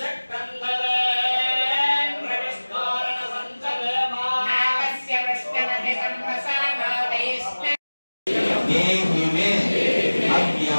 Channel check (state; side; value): inverted; both; correlation -1.00